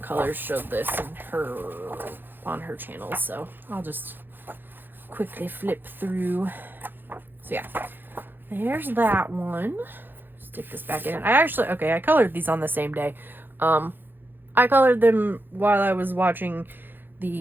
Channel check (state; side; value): late; left; 0.096 ms